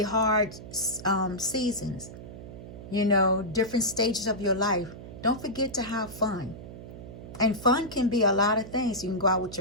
seasons, different stages of your life. Don't forget to have fun. And fun can be a lot of things. You can go out with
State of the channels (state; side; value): noise; right; hum, 13 dB below the sound